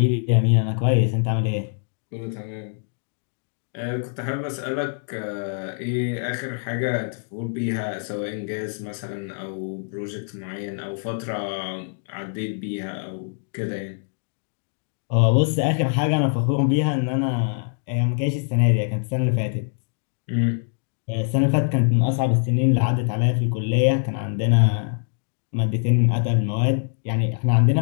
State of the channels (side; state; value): right; silent; digital silence